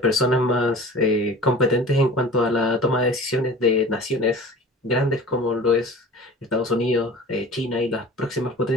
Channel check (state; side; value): normal; both; correlation 0.40